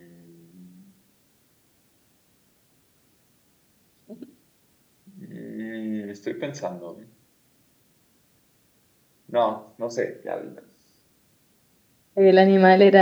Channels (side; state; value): both; identical; correlation 1.00